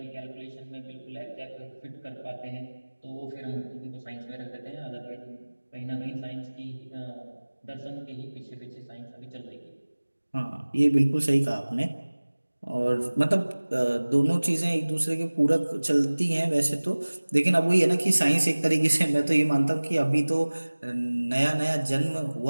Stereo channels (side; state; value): both; inverted; correlation -1.00